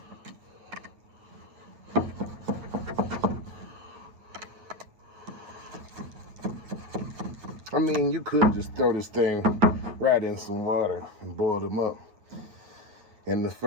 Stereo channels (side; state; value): left; late; 9.1 ms